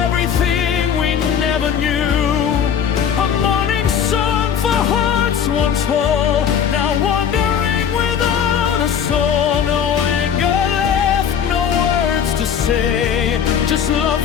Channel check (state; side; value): quieter; right; 8.1 dB